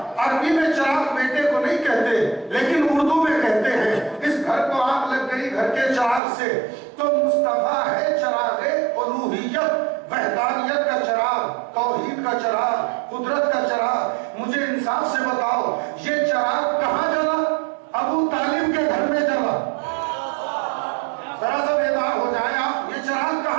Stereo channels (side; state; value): left; drops out; at 6.2 s